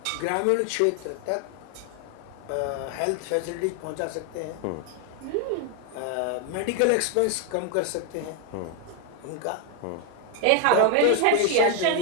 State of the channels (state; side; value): different; both; correlation 0.00